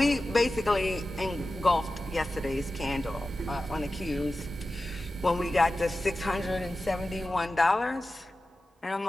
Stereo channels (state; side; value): normal; both; correlation 0.94